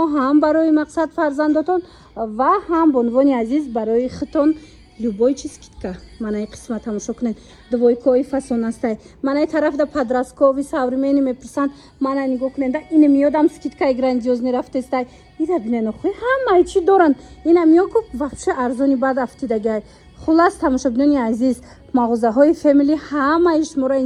ҳам барои мақсад фарзандотон ва ҳам бо унвони азиз барои хитон любой чиз скидка. Манаи қисма тамошо кунед. Двойкои фасон астай. Манаи тарафда подросткови современи мепурсанд. Мана нигоҳ кунед. Ин миёдам скидкаи грандиозни рафтестай. Ира бинен охӯи ҳамаи чӣ доранд. Ина миёку вообще арзони баъд афтидагай. Хулас тамошобинони азиз, мағозаҳои Family ҳамаи шуморо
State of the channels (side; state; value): both; identical; correlation 1.00